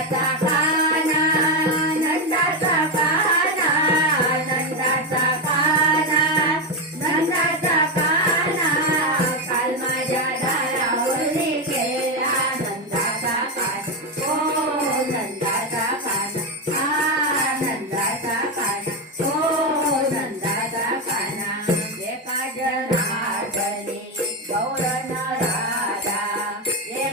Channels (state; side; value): normal; both; correlation 0.10